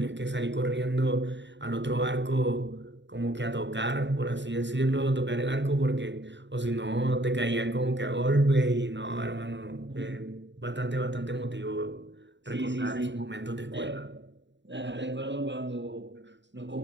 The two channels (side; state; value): left; late; 0.52 ms